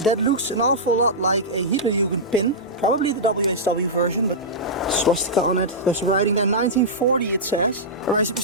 That looks an awful lot like a Hitlerjugend pin. Probably the WHW version, but swastika on it. There's writing there, 1940 it says. Alright,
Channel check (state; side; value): normal; both; correlation -0.13